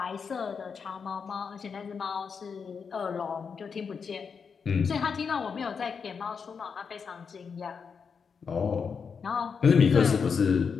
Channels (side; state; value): right; quieter; 6.0 dB